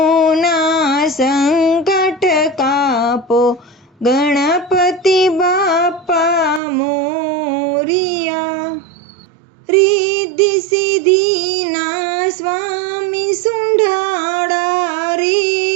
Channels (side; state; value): left; drops out; at 6.6 s